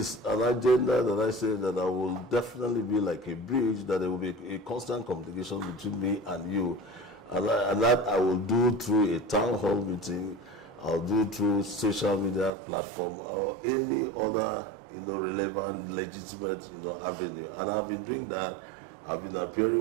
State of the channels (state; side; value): drops out; left; at 12.5 s